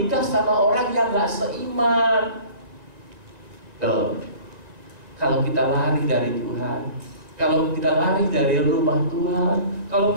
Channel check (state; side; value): late; left; 1.9 ms